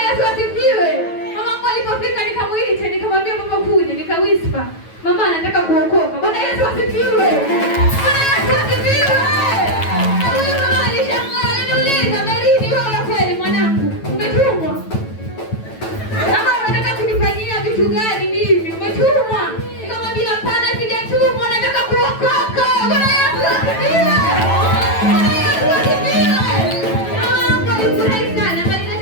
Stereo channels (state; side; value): late; right; 9.1 ms